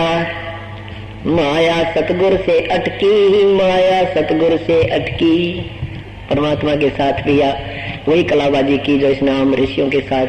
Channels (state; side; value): identical; both; correlation 1.00